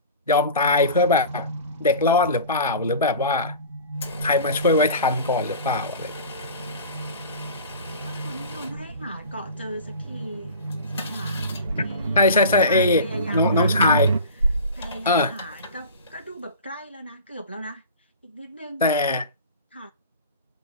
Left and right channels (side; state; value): both; inverted; correlation -0.37